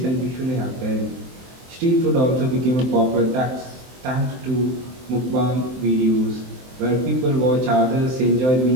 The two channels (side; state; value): left; late; 23 ms